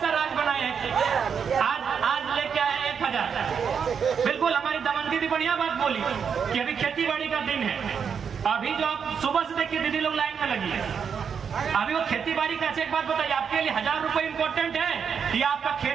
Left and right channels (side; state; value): left; quieter; 6.8 dB